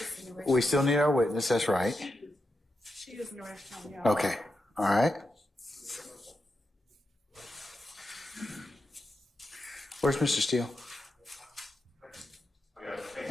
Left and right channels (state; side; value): normal; both; correlation 0.87